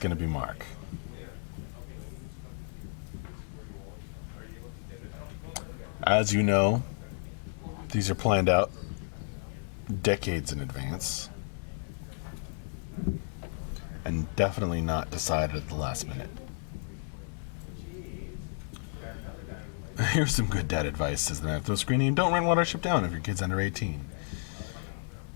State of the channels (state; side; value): silent; right; digital silence